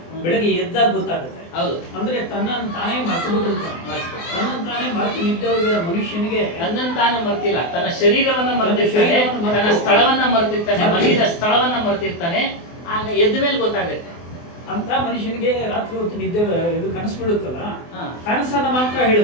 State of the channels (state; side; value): late; right; 24 ms